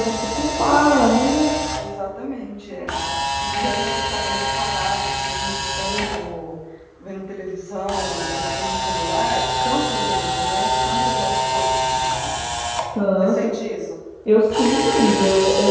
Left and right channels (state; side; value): identical; both; correlation 1.00